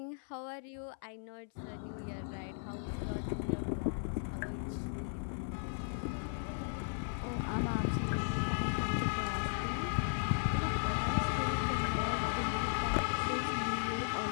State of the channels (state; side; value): silent; right; 54 dB below the other